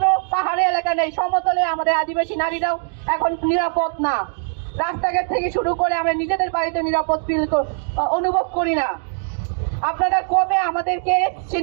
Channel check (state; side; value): silent; left; 65 dB below the other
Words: পাহাড়ি এলাকা নেই, সমতলে আমাদের আদিবাসী নারীরাও এখন নিরাপদ না। রাস্তাঘাট থেকে শুরু করে আমরা নিজেদের বাড়িতে নিরাপদ অনুভব করি না। আপনারা কবে আমাদেরকে সে